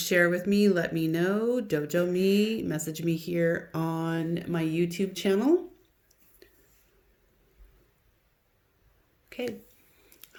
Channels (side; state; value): both; identical; correlation 1.00